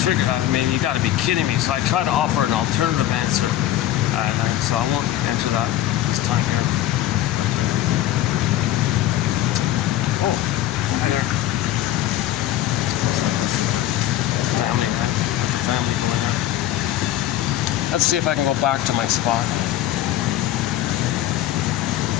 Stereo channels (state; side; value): quieter; right; 13.1 dB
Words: I mean, you got to be kidding me. So I try to offer an alternative answer. So I won't answer that this time here. But, oh, hi there. This is the family. Got the family going there. Let's see if I can go back to my spot.